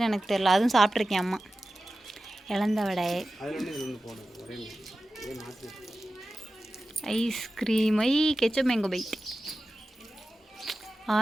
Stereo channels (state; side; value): normal; both; correlation 0.95